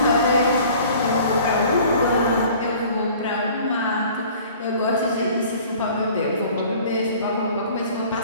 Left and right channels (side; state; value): both; inverted; correlation -0.49